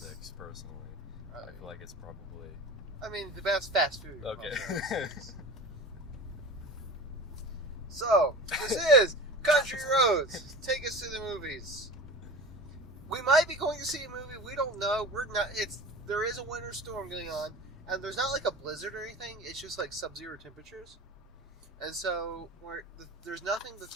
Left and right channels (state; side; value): normal; both; correlation 0.34